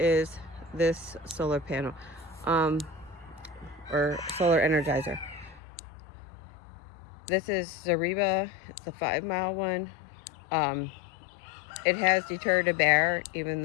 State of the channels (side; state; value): right; drops out; at 5.6 s